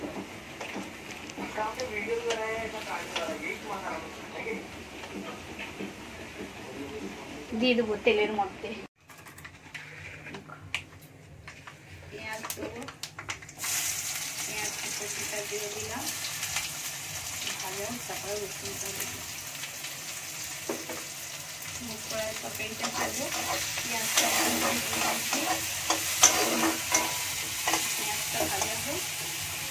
দিয়ে দেবো তেলের মধ্যে পেঁয়াজ দেবো, পেঁয়াজ কুচিটা দিয়ে দিলাম, ভালো তারপরে রসুনটা দেবো। কড়াই তরকারিটা ভাজবো, পেঁয়াজটা পেঁয়াজটা ভাজা হোক,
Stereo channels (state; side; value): identical; both; correlation 1.00